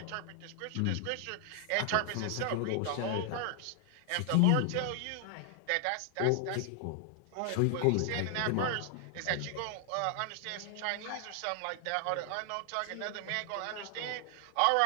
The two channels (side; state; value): both; different; correlation 0.00